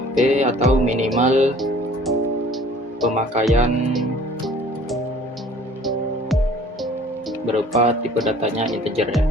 P atau minimal pemakaian berupa tipe datanya integer ya.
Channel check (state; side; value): normal; both; correlation 0.51